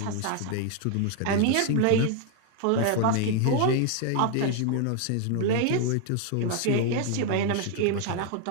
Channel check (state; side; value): different; both; correlation 0.01